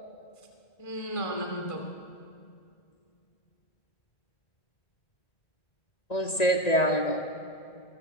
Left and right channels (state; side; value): late; right; 1.9 ms